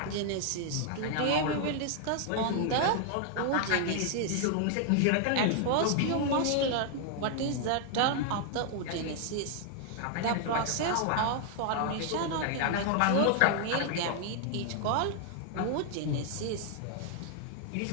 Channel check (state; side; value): different; both; correlation 0.00